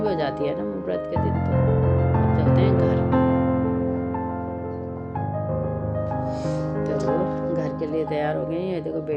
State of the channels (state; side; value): identical; both; correlation 1.00